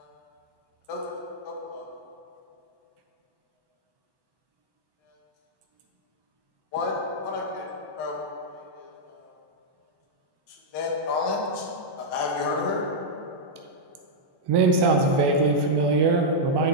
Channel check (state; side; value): late; left; 1.1 ms